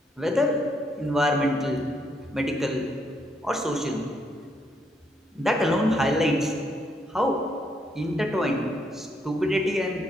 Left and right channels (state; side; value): normal; both; correlation 0.74